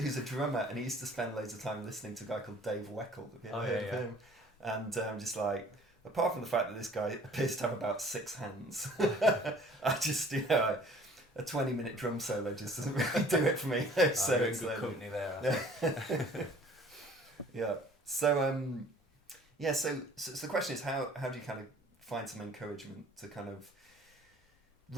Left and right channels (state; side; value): normal; both; correlation 0.52